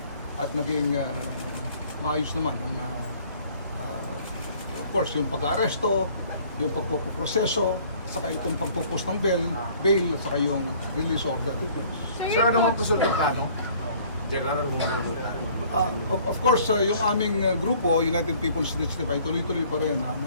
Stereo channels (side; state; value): both; inverted; correlation -0.55